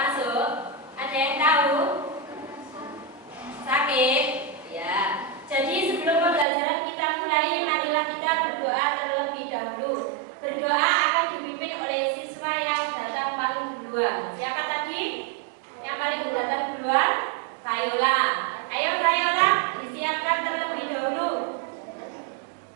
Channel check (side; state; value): left; drops out; at 6.5 s